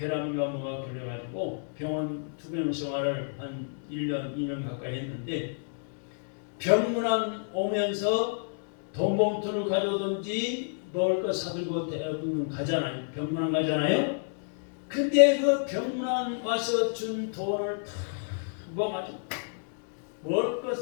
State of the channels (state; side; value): silent; right; digital silence